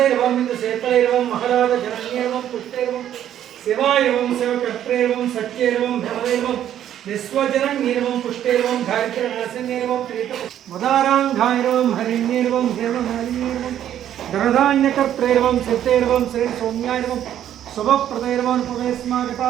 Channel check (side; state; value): left; quieter; 10.9 dB